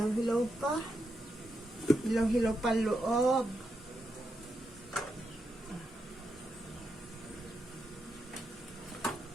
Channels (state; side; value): normal; both; correlation 0.84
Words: pa. Hilaw-hilaw pa loob.